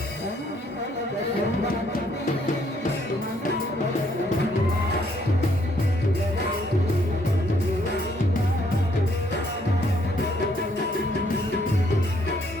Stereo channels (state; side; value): normal; both; correlation 0.68